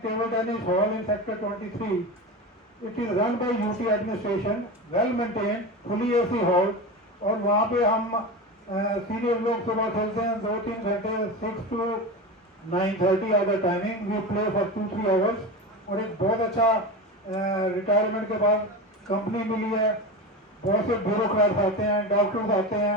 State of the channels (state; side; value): normal; both; correlation 0.25